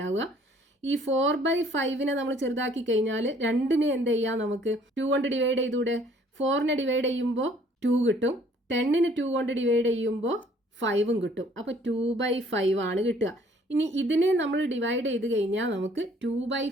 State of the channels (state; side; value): normal; both; correlation 0.58